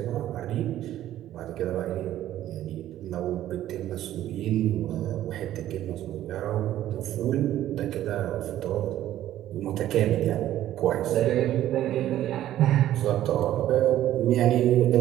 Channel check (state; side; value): quieter; left; 12.9 dB